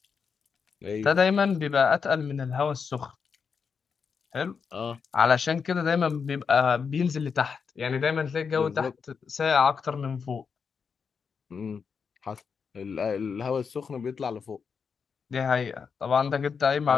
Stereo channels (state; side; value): quieter; right; 6.0 dB